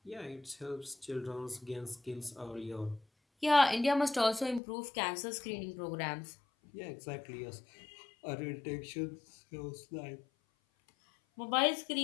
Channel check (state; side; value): drops out; right; at 4.6 s